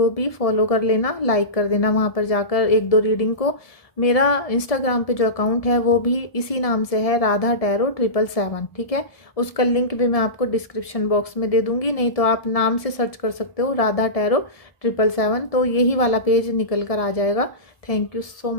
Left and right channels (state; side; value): late; right; 1.7 ms